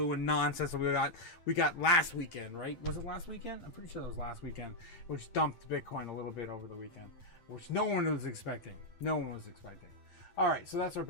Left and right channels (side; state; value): right; late; 8.7 ms